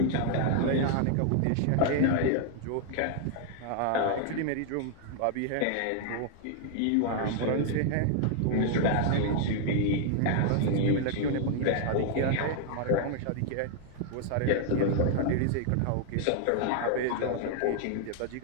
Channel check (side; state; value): both; different; correlation 0.00